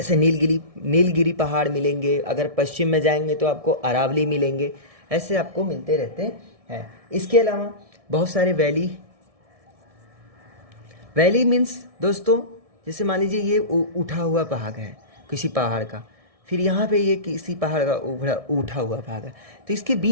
नीलगिरी पहाड़ मिलेंगे। अगर पश्चिम में जाएंगे तो आपको अरावली मिलेंगे। ऐसे आपको मिलते रहते हैं। इसके अलावा बहुत सारे वैली मीन्स दोस्तों, जैसे मान लीजिए ये उठा हुआ पहाड़ है किसी पहाड़ का, फिर यहाँ पे ये किसी पहाड़ का उठा हुआ पहाड़ है, तो इसके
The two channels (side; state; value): left; late; 1.6 ms